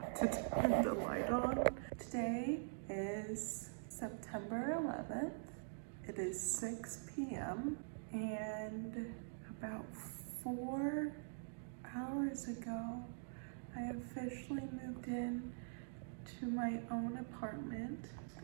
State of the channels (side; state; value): left; silent; digital silence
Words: to turn the light on. Today is September 11th. It is 6 p.m. and about 4 hours ago, I officially moved in to my own apartment.